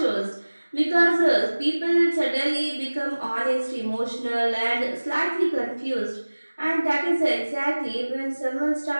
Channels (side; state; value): both; inverted; correlation -1.00